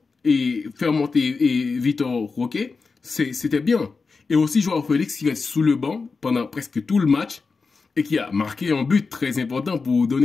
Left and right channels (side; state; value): right; quieter; 4.5 dB